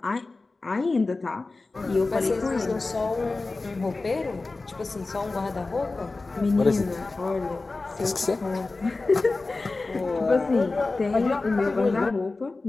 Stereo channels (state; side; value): quieter; right; 3.5 dB